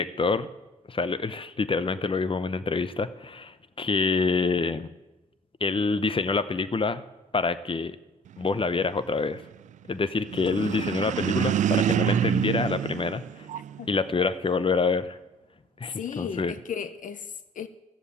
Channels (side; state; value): both; normal; correlation 0.49